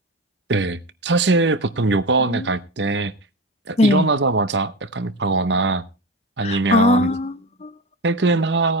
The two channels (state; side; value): normal; both; correlation 0.24